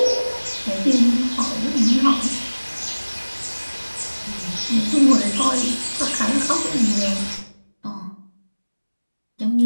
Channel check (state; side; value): inverted; both; correlation -1.00